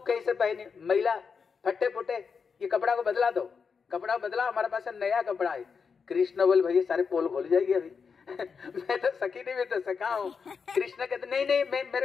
कैसे पहने महिला फटे फुटे, ये कपड़ा को बदला दो, कपड़ा बदला, हमारे पास नया कपड़ा है। कृष्ण बोल भैया सारे पोल खोल जाएगी अभी मैं तो सखी नहीं, मैं तो सखा हूँ। कृष्ण कहते नहीं नहीं मैं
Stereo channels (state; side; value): quieter; right; 5.7 dB